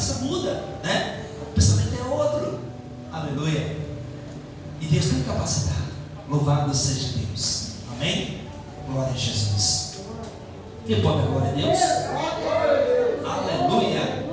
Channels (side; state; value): both; identical; correlation 1.00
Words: muda, né? O pensamento é outro. Aleluia. capacitar. Louvado seja Deus. Amém? Glória a Jesus. Quem pode dar glória a Deus? Aleluia.